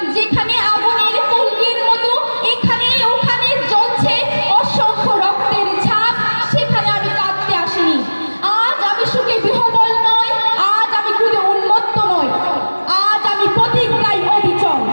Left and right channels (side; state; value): both; inverted; correlation -1.00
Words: যেখানে আগুনের ফুলকির মতো এখানে ওখানে জ্বলছে অসংখ্য রক্তের ছাপ, সেখানে আমি কাঁদতে আসিনি। আজ আমি সুখে বিহবল নয়, আজ আমি ক্রোধে উন্মত্ত নয়, আজ আমি প্রতিজ্ঞায় অবিচল।